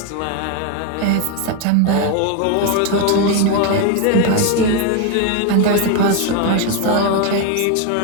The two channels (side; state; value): both; different; correlation 0.01